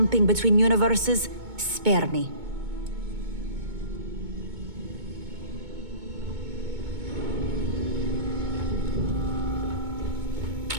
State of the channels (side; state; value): left; late; 2.2 ms